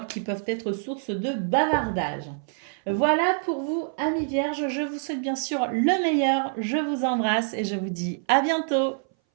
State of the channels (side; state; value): left; silent; 59 dB below the other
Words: qui peuvent être source de bavardage. Voilà pour vous, amis vierges. Je vous souhaite bien sûr le meilleur. Je vous embrasse et je vous dis à bientôt.